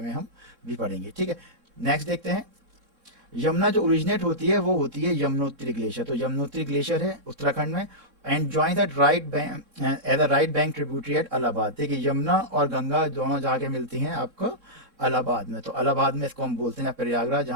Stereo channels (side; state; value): left; late; 3.6 ms